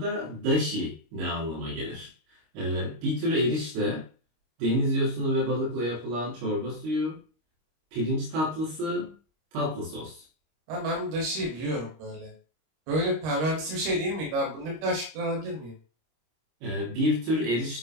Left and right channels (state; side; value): late; left; 26 ms